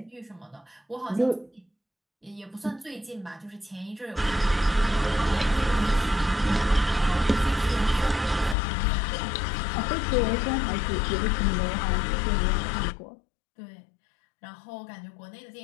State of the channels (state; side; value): drops out; right; at 8.6 s